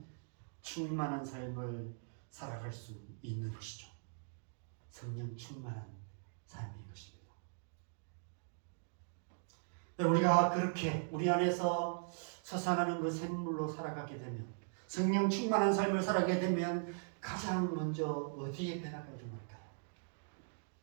충만한 삶을 살아갈 수 있는 것이죠. 성령 충만한 삶인 것입니다. 우리가 그렇게 우리 안에서 솟아나는 그 샘물로 살아가게 되면, 성령 충만한 삶을 살아가게 되면 가장 먼저 어디에 변화가 일어날까요?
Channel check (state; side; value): silent; left; digital silence